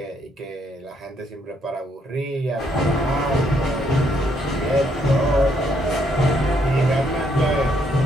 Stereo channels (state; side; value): normal; both; correlation 0.72